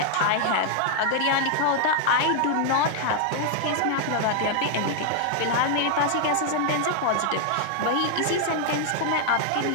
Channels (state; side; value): different; both; correlation 0.00